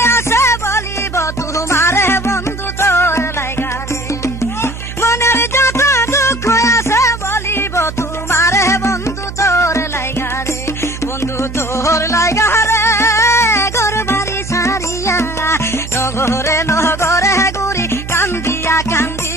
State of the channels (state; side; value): noise; right; hum, 9 dB below the sound